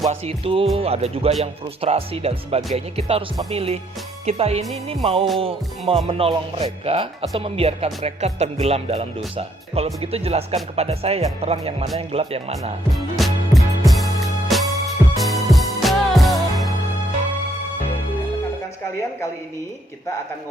itu ada juga yang frustrasi dan sebagainya. Kita harus memilih. Kita ini mau menolong mereka atau membiarkan mereka tenggelam dalam dosa. Kalau begitu jelaskan kepada saya yang terang yang mana, yang gelap yang mana. Rekan-rekan sekalian, kali ini kita akan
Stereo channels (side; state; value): both; normal; correlation 0.70